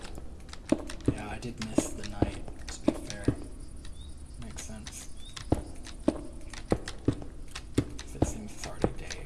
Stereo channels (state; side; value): identical; both; correlation 1.00